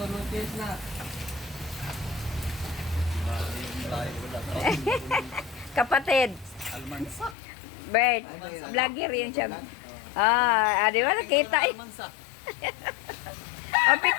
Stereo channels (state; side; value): drops out; right; at 7.4 s